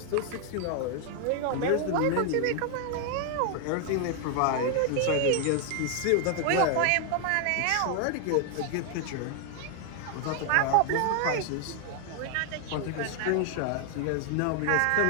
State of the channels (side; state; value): both; different; correlation 0.00